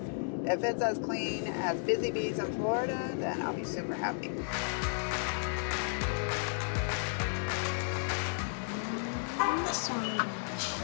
if it's as clean as Busy Bees in Florida, then I'll be super happy. This one.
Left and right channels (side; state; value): right; silent; digital silence